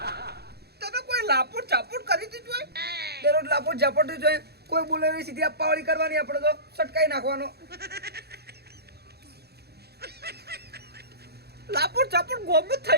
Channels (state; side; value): late; left; 0.47 ms